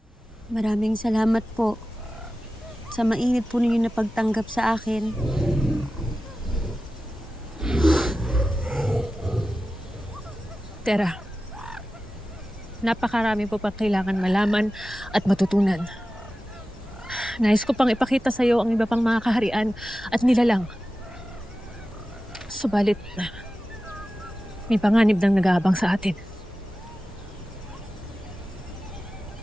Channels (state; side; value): normal; both; correlation 0.94